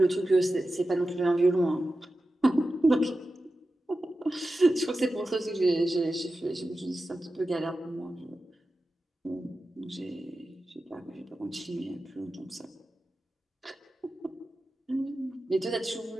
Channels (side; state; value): both; normal; correlation 0.93